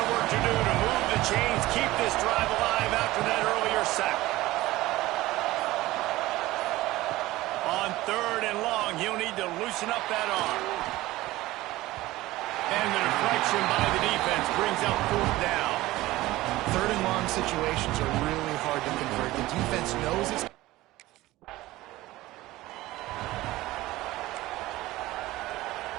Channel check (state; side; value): quieter; left; 17.8 dB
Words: of work to do to move the chains, keep this drive alive after that earlier sack. On 3rd and long, he'll need to loosen up that arm. And the deflection by the defense brings up 4th down. 3rd and long situations are really hard to convert. The defense knows it's...